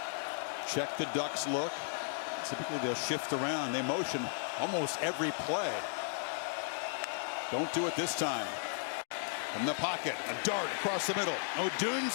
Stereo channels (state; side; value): silent; right; digital silence